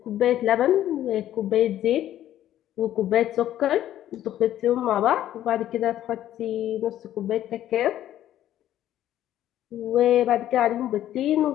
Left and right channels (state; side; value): quieter; right; 12.3 dB